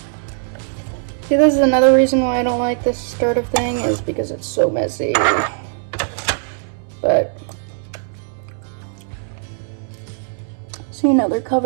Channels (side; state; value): left; silent; 59 dB below the other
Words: See, this is another reason why I don't like this starter thing, is because it's so messy. But see, now they're